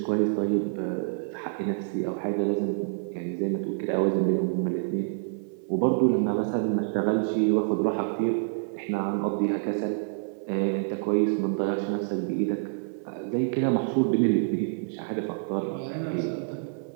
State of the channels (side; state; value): left; silent; 59 dB below the other